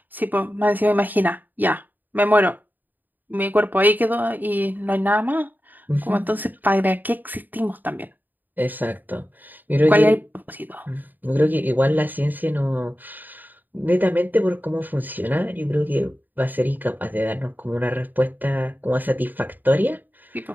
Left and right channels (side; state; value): left; late; 0.087 ms